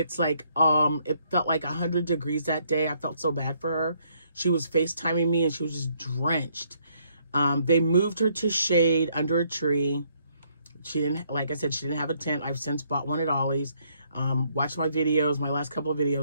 like, it felt like 100 degrees that day. I felt so bad for her. She was FaceTiming me, and she was just drenched. They moved her to shade under a tree. She didn't, like I said, she didn't have a tent. I've since bought one at Ollie's. Watch my videos, my last couple of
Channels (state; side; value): inverted; both; correlation -0.70